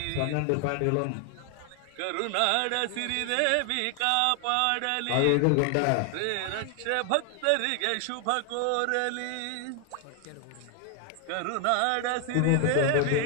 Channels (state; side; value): different; both; correlation 0.00